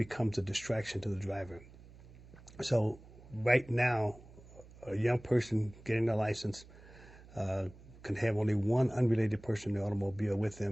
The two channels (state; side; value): noise; right; hum, 20 dB below the sound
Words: a distraction to the driver. So right now, a young person getting their license can have only one unrelated person in the automobile with